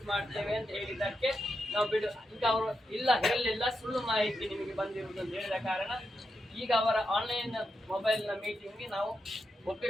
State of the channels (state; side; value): normal; both; correlation 0.86